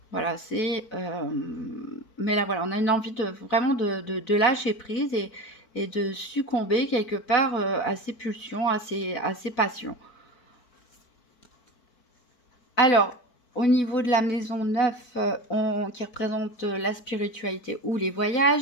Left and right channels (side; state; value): right; late; 4.5 ms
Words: voilà, mais là, voilà, on a une envie vraiment de lâcher prise et de succomber quelque part à ses pulsions, à ses passions. Alors, au niveau de la maison 9, qui représente la spiritualité ou les